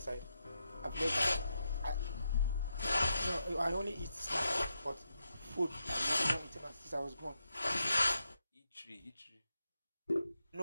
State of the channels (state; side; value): inverted; both; correlation -0.84